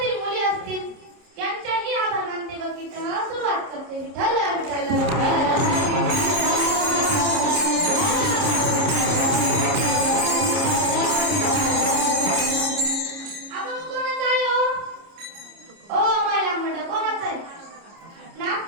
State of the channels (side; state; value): left; late; 30 ms